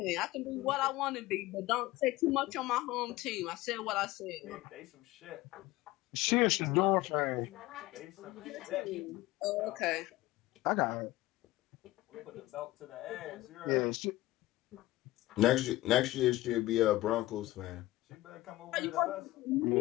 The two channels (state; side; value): quieter; right; 17.8 dB